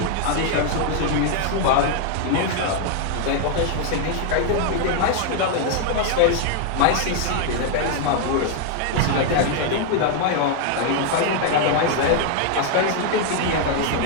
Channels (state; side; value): different; both; correlation 0.00